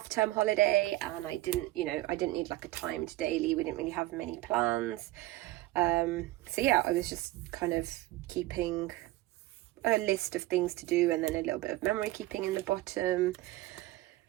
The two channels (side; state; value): left; quieter; 17.5 dB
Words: holiday and I didn't need like a timed daily. We didn't really have many plans. So yeah, I was just kind of keeping a list of things to do and then a little bit of memory keeping in the bottom.